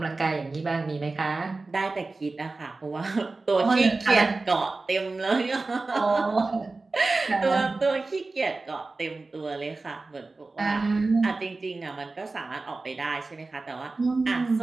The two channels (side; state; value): left; quieter; 3.5 dB